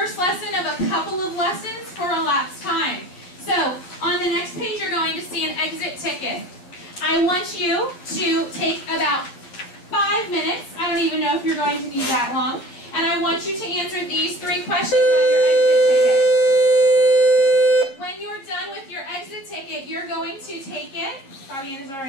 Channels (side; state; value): right; late; 11 ms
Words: lesson of a couple of lessons for elapsed time. So on the next page, you're going to see an exit ticket. I want you to take about 5 minutes. I don't even know if you're going to need that long. And I want you to answer these 3 questions on your exit ticket. When you're done with your exit ticket, you're going to take it. Bobby Ann, is it all